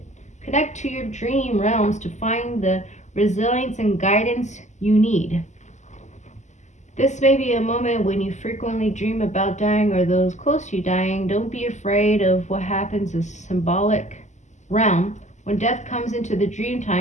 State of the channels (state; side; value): late; right; 0.34 ms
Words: to your dream realms to find the resilience and guidance you need. This may be a moment when you frequently dream about dying or those close to you dying. Don't be afraid of what happens as symbolic realm. When death comes into the dream